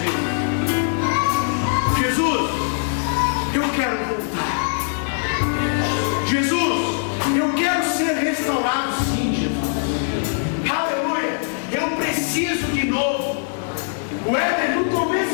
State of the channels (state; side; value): silent; right; digital silence